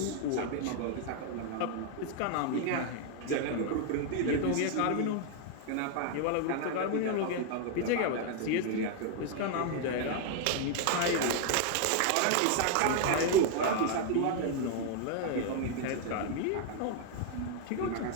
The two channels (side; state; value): both; different; correlation 0.00